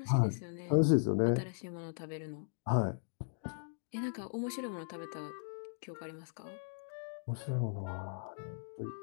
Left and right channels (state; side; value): silent; right; digital silence